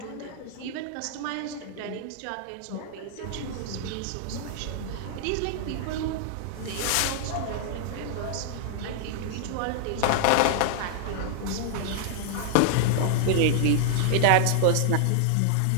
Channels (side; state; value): both; different; correlation -0.01